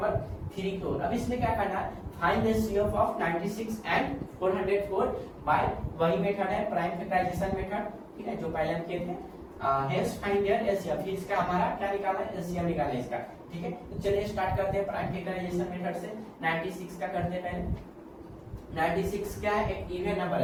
3 की ओर। अब इसमें क्या करना है, find the CF of 96 and 404 by वही मेथड है प्राइम फैक्टराइजेशन मेथड, ठीक है, जो पहले हम किए थे। हेंस फाइंड देयर एलसीएम, फिर इसका हमारा क्या निकालना है, एलसीएम निकालना है इसका, ठीक है। तो चलिए स्टार्ट करते हैं प्राइम फैक्टराइजेशन मेथड से। 96 का करते हैं पहले। 96 क्या है, एक इवन नंबर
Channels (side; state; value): both; identical; correlation 1.00